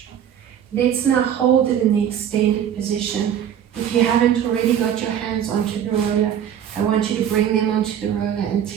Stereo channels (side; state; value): left; quieter; 9.4 dB